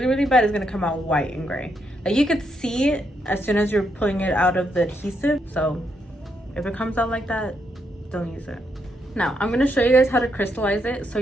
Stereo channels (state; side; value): normal; both; correlation 0.79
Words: really bad, it's gonna come out white and gray. Like you could see it as soon as you're pulling it out of the adhesive. So if it comes out like that, don't use it. Now, I'm going to show you guys how to crystallize it so